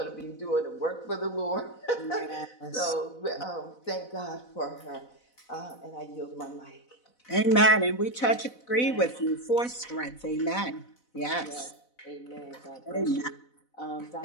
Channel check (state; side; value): late; right; 4.0 ms